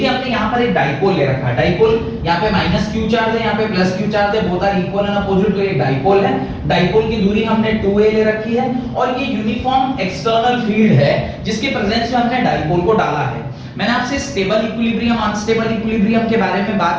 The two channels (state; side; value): identical; both; correlation 1.00